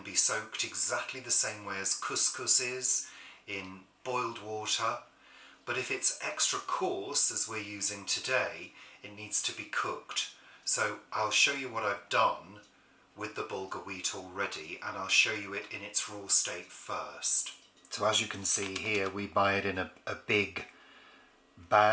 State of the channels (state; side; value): identical; both; correlation 1.00